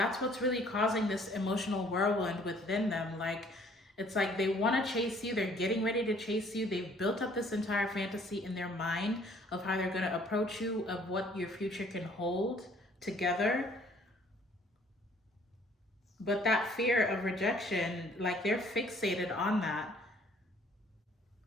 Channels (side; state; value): both; normal; correlation 0.59